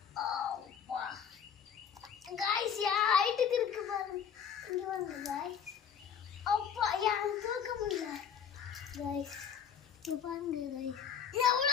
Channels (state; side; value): quieter; right; 7.7 dB